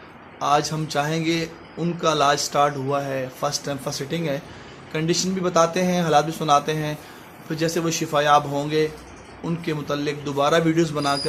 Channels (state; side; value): identical; both; correlation 1.00